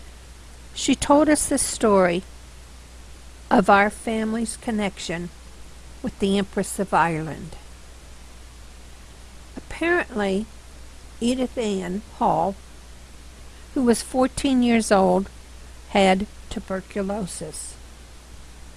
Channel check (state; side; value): identical; both; correlation 1.00